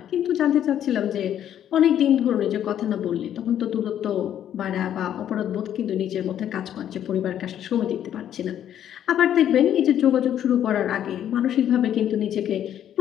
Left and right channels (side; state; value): right; quieter; 10.4 dB